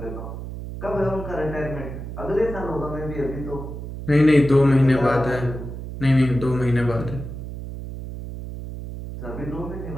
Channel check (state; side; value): noise; right; hum, 9 dB below the sound